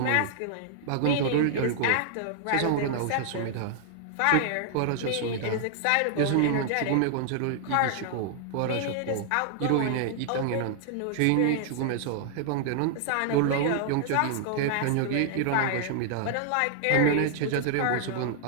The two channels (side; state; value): both; different; correlation -0.01